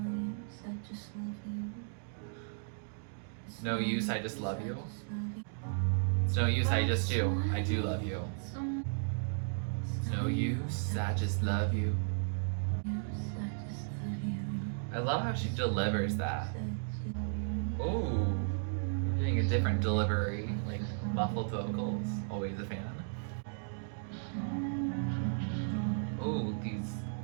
No use, I just love you. It's no use, I just do. I do love you. It's no use, I just love you. I love how she delivers that. Oh, we're getting a different delivery, like muffled vocals. Always a fan. Oh, these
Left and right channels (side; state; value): left; silent; digital silence